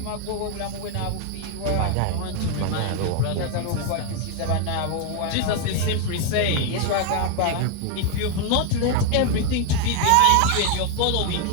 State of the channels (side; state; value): both; different; correlation 0.01